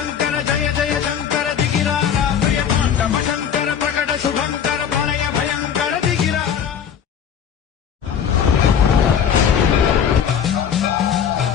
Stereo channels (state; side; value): quieter; right; 8.2 dB